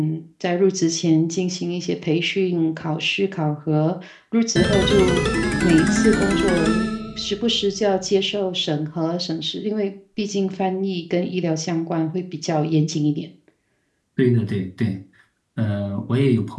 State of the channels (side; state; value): both; identical; correlation 1.00